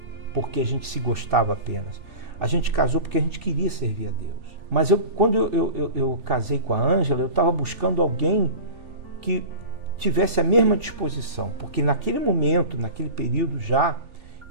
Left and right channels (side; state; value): left; late; 3.4 ms